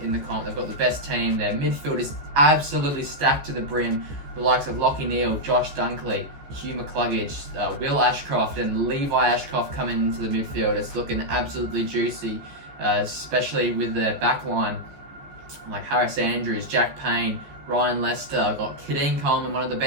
the comp. They've got the best team. Their midfield is absolutely stacked to the brim. The likes of Lachie Neale, Josh Dunkley, Hugh McCluggage, Will Ashcroft and Levi Ashcroft coming into the midfield. It's looking absolutely juicy, especially with their backline like Harris Andrews, Jack Payne, Ryan Lester. Got Kadeem Coleman, one of the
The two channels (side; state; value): left; late; 14 ms